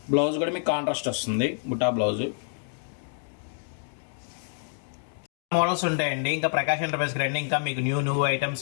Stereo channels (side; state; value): right; silent; 60 dB below the other